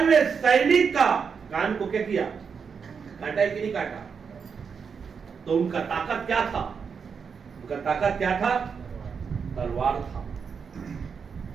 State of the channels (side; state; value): left; quieter; 6.1 dB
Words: हुए सैनिक का कान को क्या किया? काटा है कि नहीं काटा? तो उनका ताकत क्या था? उनका ताकत क्या था? तलवार था।